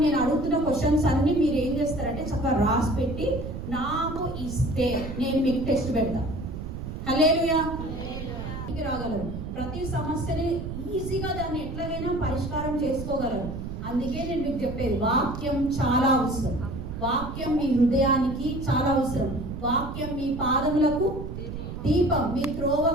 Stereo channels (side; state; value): right; noise; rumble, 7 dB below the sound